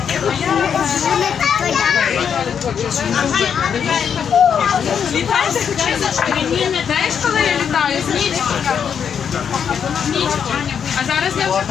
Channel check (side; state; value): right; quieter; 7.6 dB